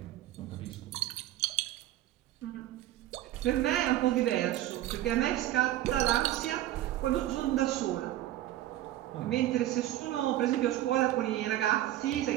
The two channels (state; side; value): quieter; left; 14.1 dB